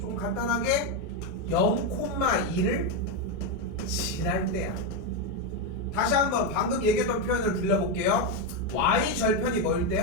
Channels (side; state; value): both; normal; correlation 0.06